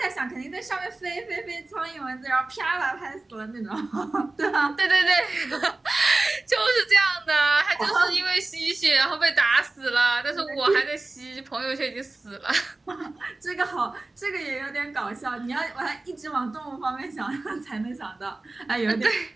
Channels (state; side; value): quieter; left; 3.1 dB